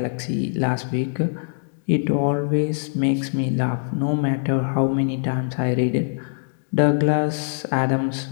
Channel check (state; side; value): silent; right; digital silence